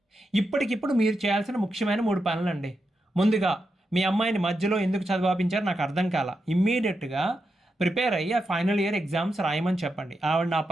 ఇప్పటికిప్పుడు మీరు చేయాల్సిన ముఖ్యమైన 3 పనులండి. ముందుగా మీ అమ్మాయిని మధ్యలో ఎందుకు చదివాపించారు నాకు అర్థం కాల. ఇమ్మీడియట్గా ప్రిపేర్ అయ్యి ఆ ఫైనల్ ఇయర్ ఎగ్జామ్స్ రాయమని చెప్పండి, ఆవిడ నా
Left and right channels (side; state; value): both; normal; correlation 0.86